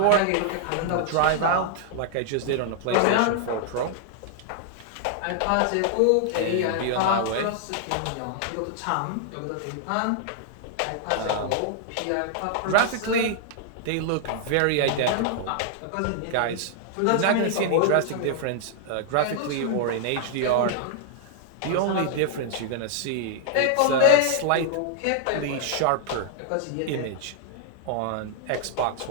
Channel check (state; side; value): different; both; correlation -0.01